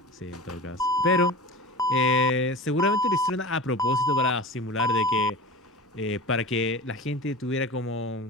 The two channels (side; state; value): both; normal; correlation 0.33